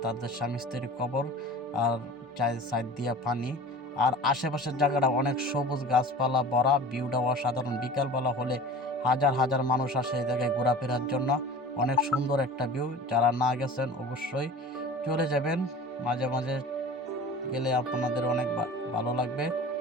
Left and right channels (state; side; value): normal; both; correlation 0.39